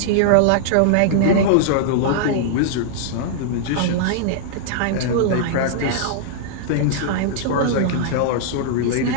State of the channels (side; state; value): both; different; correlation -0.01